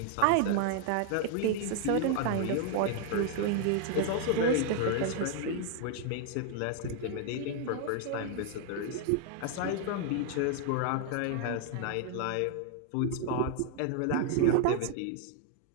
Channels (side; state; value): both; different; correlation 0.00